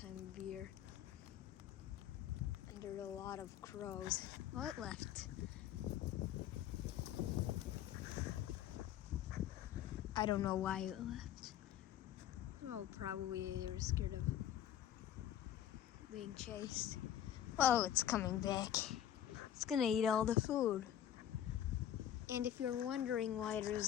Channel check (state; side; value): quieter; right; 10.8 dB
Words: of year. And there's a lot of crows. Oh, it left. I don't know why it left. Oh, probably they were scared of being chased. Oh, it's coming back. It's gonna eat all the food. And if you're wondering why